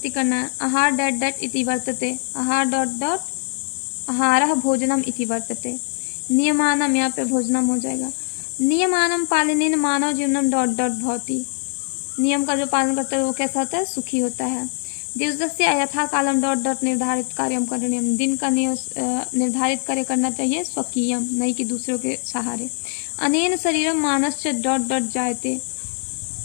करना है। आहार डैट डैट इति वर्तते, आहार डॉट डॉट आहारः भोजनम इति वर्तते। नियमानम, यहाँ पे भोजनम हो जाएगा। नियमानम पालनेन मानव जीवनम डॉट डॉट भवति, नियम का जो पालन करता है वो कैसा होता है? सुखी होता है। दिवसस्य यथा कालम डॉट डॉट निर्धारित कार्यम करणीयम, दिन का निर्धारित कार्य करना चाहिए स्वकीयम, नहीं कि दूसरों के सहारे। अनेन शरीरम मानस्य डॉट डॉट जायते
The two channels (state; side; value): silent; right; 64 dB below the other